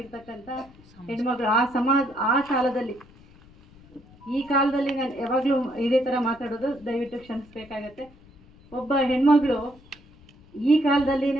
ಹೆಣ್ಮಗಳು ಆ ಕಾಲದಲ್ಲಿ, ಈ ಕಾಲದಲ್ಲಿ ನಾನು ಯಾವಾಗಲೂ ಇದೇ ಥರ ಮಾತಾಡೋದು, ದಯವಿಟ್ಟು ಕ್ಷಮಿಸಬೇಕಾಗತ್ತೆ. ಒಬ್ಬ ಹೆಣ್ಮಗಳು ಈ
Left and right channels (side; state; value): left; noise; rumble, 25 dB below the sound